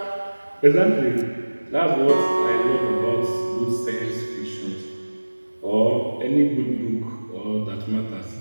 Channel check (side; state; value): both; inverted; correlation -1.00